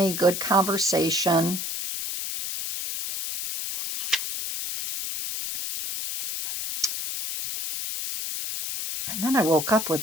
good conversation. And then I woke up with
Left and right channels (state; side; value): noise; left; hiss, 4 dB below the sound